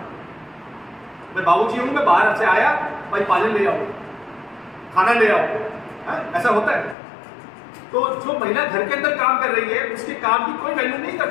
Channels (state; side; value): drops out; right; at 7.0 s